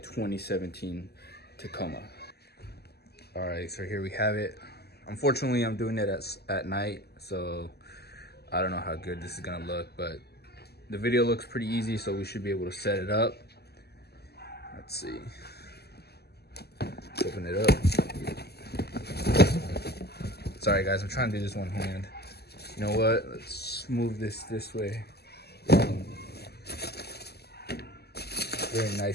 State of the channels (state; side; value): late; right; 0.47 ms